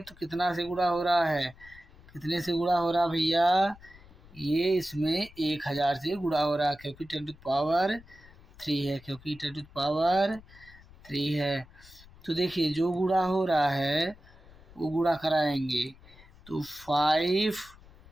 तो कितना से गुणा हो रहा है, कितने से गुणा हो रहा भैया, ये इसमें 1,000 से गुणा हो रहा है, क्योंकि 10⁻³ है, क्योंकि 10⁻³ है। तो देखिए जो गुणा हो रहा है वो गुणा कराएंगे, तो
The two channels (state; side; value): noise; left; rumble, 23 dB below the sound